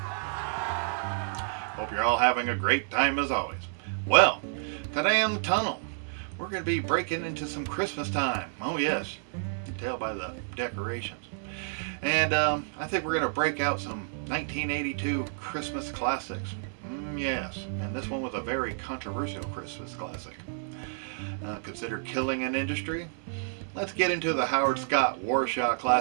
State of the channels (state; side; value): silent; left; 58 dB below the other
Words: Hope you're all having a great time as always. Well, today on the tunnel, we're going to be breaking into some Christmas time. Oh yes, you can tell by the decorations. And I think we're going to break out some 1982 Christmas classics. Yes, and this one was a very controversial Christmas classic. Considered killing an industry. Let's get into the Howard Scott Warshaw